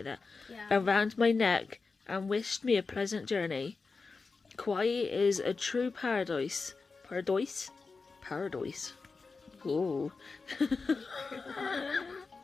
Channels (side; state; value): right; quieter; 4.3 dB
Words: that. Yeah. Around my neck and wished me a pleasant journey. Kauai is a true paradise. Paradise. Ooh.